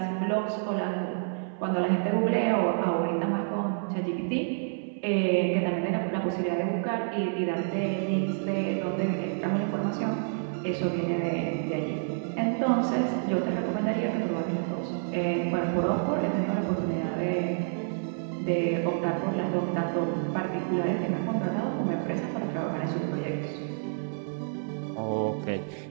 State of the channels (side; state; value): left; silent; 59 dB below the other